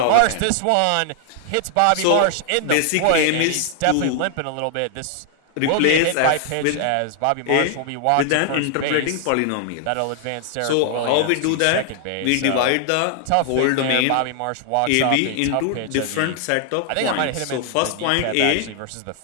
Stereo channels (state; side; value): different; both; correlation 0.00